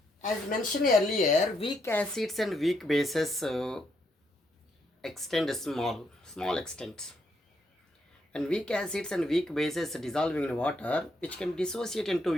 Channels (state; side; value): normal; both; correlation 0.76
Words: as mentioned earlier, weak acids and weak bases extend small extent. And weak acids and weak bases dissolving in water, which can dissociate